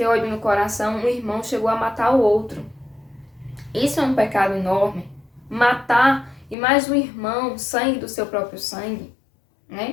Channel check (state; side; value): drops out; right; at 6.6 s